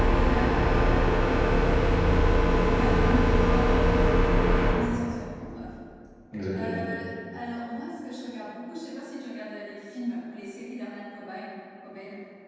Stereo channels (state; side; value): identical; both; correlation 1.00